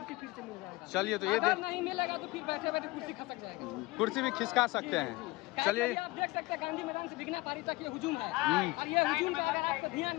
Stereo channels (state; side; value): quieter; right; 21.3 dB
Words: फिर से मिल जाएगा। चलिए, तो ये अगर नहीं मिलेगा तो फिर बैठे बैठे कुर्सी खसक जाएगा, कुर्सी भी खिसका सकते हैं। चलिए, आप देख सकते हैं गांधी मैदान से भिखना पहाड़ी तक ये हुजूम है, और ये हुजूम पे अगर आपका ध्यान